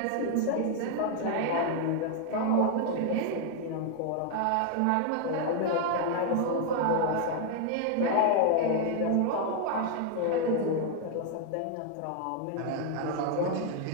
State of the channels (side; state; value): both; different; correlation 0.00